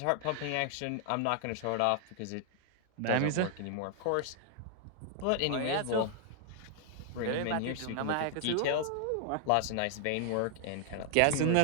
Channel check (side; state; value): both; different; correlation 0.00